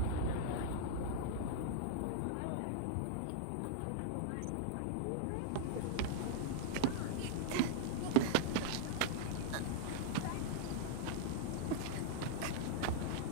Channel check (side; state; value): both; different; correlation -0.01